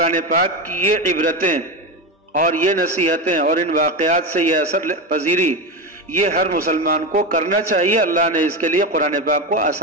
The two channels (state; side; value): normal; both; correlation 0.16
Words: پاک کی یہ عبرتیں اور یہ نصیحتیں اور ان واقعات سے یہ اثر پذیری، یہ ہر مسلمان کو کرنا چاہیے۔ اللہ نے اس کے لیے قرآن پاک کو